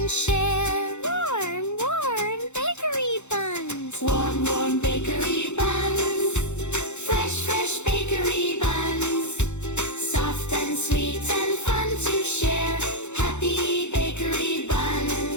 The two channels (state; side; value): late; right; 0.83 ms